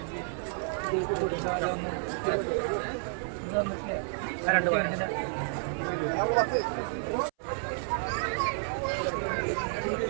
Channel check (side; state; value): left; silent; 57 dB below the other